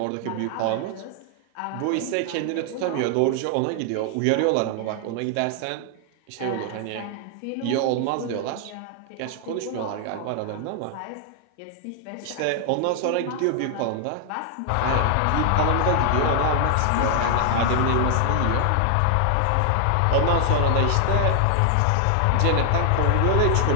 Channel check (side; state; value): both; different; correlation 0.00